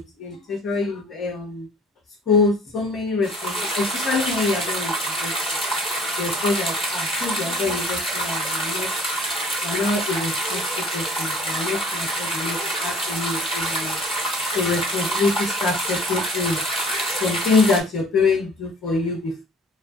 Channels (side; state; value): both; normal; correlation 0.51